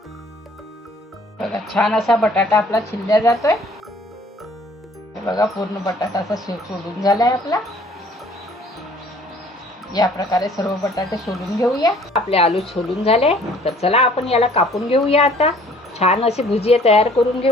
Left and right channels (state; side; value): normal; both; correlation 0.55